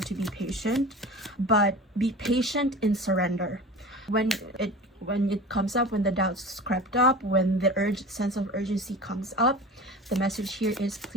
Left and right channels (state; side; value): normal; both; correlation 0.35